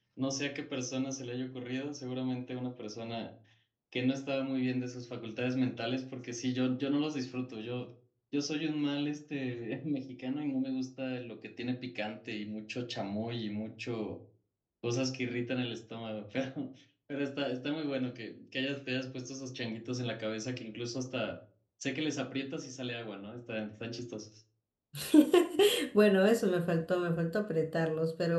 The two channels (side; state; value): both; identical; correlation 1.00